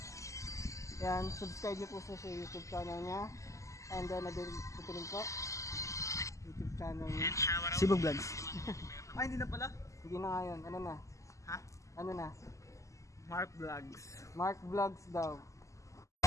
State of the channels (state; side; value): late; right; 0.16 ms